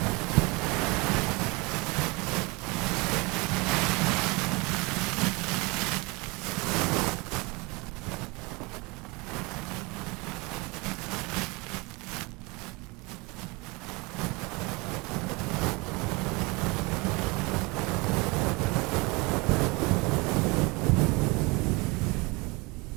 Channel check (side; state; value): left; quieter; 26.3 dB